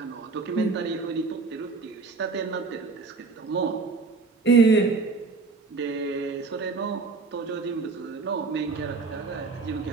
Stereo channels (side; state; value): left; quieter; 4.2 dB